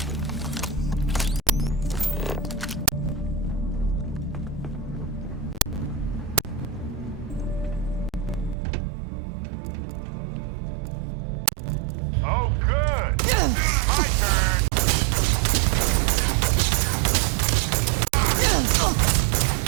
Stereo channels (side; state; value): left; drops out; at 8.6 s